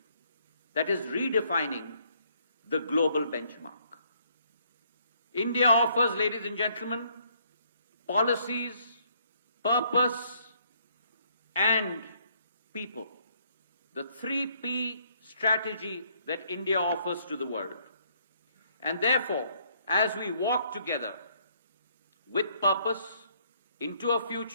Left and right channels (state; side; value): inverted; both; correlation -0.68